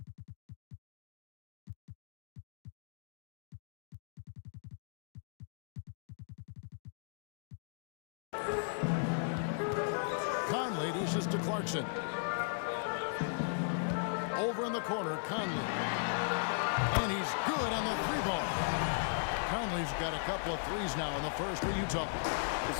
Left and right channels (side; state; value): right; silent; digital silence